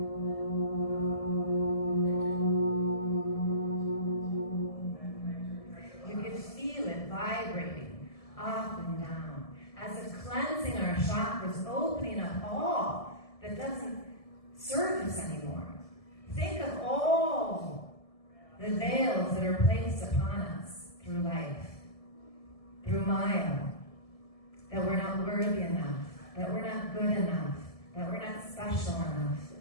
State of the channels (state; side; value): late; right; 1.7 ms